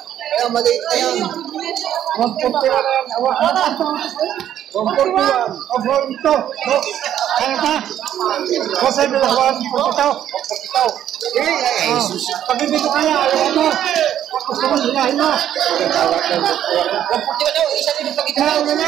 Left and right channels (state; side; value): quieter; left; 10.9 dB